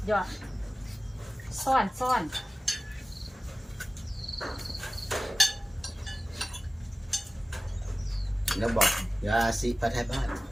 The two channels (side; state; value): both; normal; correlation 0.97